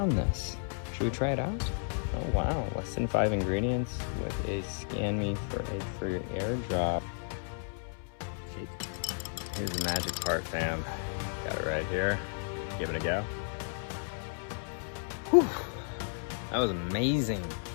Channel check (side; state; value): right; silent; 56 dB below the other